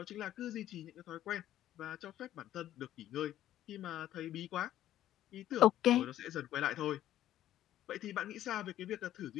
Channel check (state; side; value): quieter; right; 12.6 dB